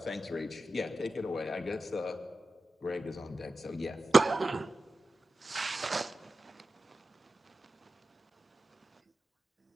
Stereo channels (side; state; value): both; normal; correlation 0.93